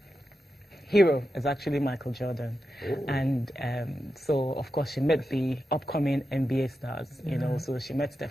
hero is actually Michael Jordan. Oh. And so, of course, she met the upcoming NBA stars, you know, so she met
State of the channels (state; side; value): normal; both; correlation 0.89